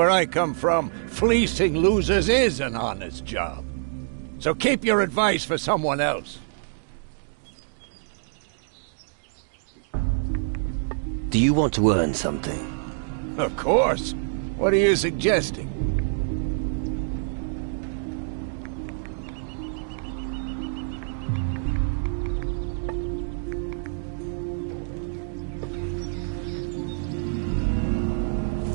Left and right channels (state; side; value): silent; left; digital silence